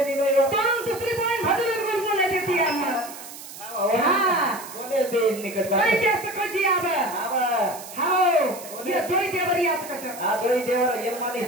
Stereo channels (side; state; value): right; noise; hiss, 14 dB below the sound